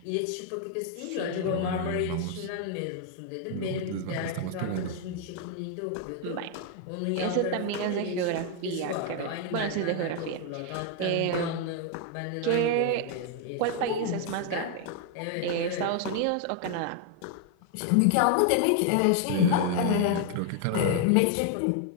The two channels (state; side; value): different; both; correlation 0.00